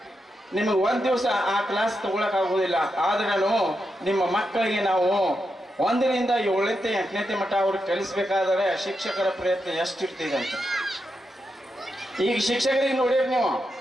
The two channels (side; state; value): both; normal; correlation 0.86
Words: ನಿಮಗೆ ಒಂದು ದಿವಸ ಆ ಕ್ಲಾಸ್ ತಗೊಳಕ್ಕಾಗೋದಿಲ್ಲ. ಆದ್ರೂ ನಿಮ್ಮ ಮಕ್ಕಳಿಗೆ ನಾವು 1ರಿಂದ 7ನೇ 8ನೇ ಮಟ್ಟ ಅವ್ರಿಗೆ ಕಲಿಸ್ಬೇಕಾದ್ರೆ ಶಿಕ್ಷಕರ ಪ್ರಯತ್ನ ಎಷ್ಟಿರ್ತಿದೆ ಅಂತ. ಈಗ ಶಿಕ್ಷಕರಿಗೆ ನೋಡಿರಿ ನೀವು,